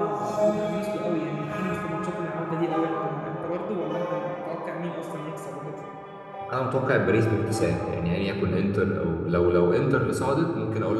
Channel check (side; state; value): both; identical; correlation 1.00